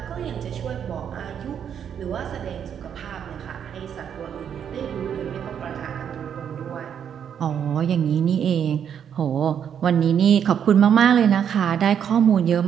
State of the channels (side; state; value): left; quieter; 8.4 dB